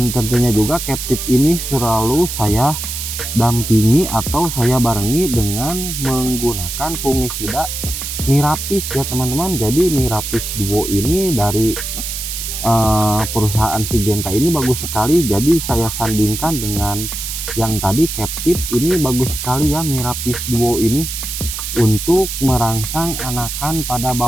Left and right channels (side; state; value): right; noise; hiss, 5 dB below the sound